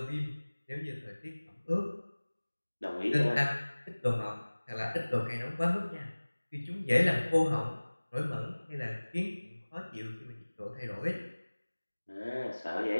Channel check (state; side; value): inverted; both; correlation -1.00